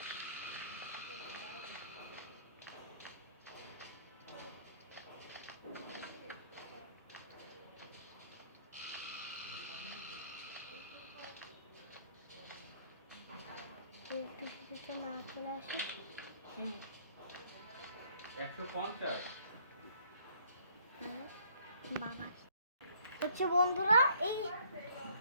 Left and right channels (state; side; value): inverted; both; correlation -0.62